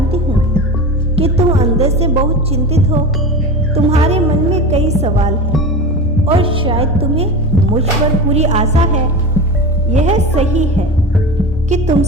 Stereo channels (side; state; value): both; normal; correlation 0.27